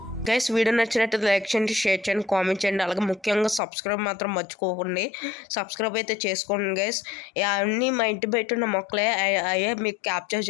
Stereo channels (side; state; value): right; drops out; at 3.6 s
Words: గైస్, వీడియో నచ్చినట్టు లైక్ చేయండి, షేర్ చేయండి, కామెంట్ చేయండి. అలాగే ముఖ్యంగా సబ్స్క్రైబ్ మాత్రం మర్చిపోకండి. సబ్స్క్రైబ్ అయితే చేసుకోండి గైస్. అన్నీ మా ఇంటి బయట ఉన్న మొక్కలే అయ్యే మీకు క్యాప్చర్